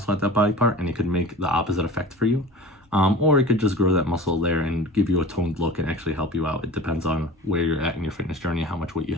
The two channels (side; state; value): both; normal; correlation 0.37